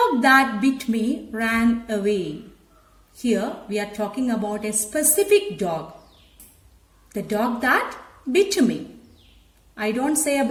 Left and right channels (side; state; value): both; identical; correlation 1.00